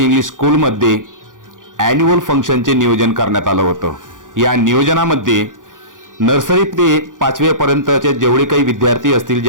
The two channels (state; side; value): late; left; 0.88 ms